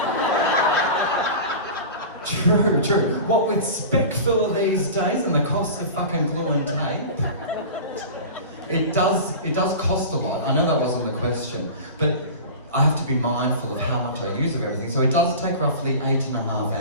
True. What with spec filler these days and the cost of fucking glue and tape, it does cost a lot. I know that wasn't the question, but I have to be mindful of how much I use of everything. So it does take roughly 8.5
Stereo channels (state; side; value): inverted; both; correlation -0.33